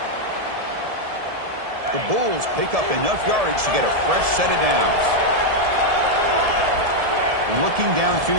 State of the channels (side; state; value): left; late; 1.7 ms